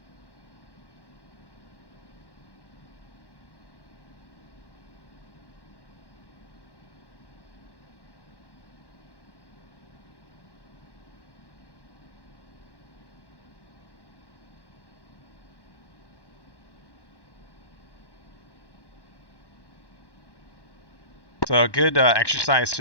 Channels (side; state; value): right; late; 1.1 ms